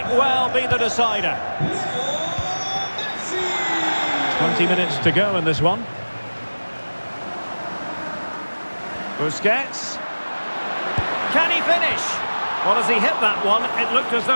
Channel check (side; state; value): both; inverted; correlation -1.00